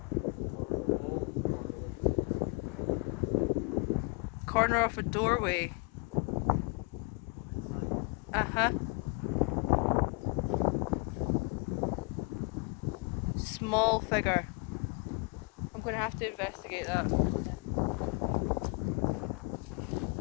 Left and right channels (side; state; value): right; quieter; 30.0 dB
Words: Corner of a doorway. Uh-huh. Small figure. I'm going to have to investigate that.